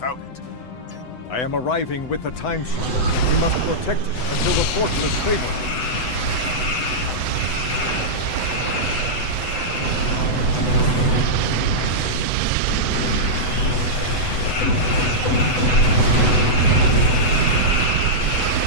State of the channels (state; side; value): late; right; 8.0 ms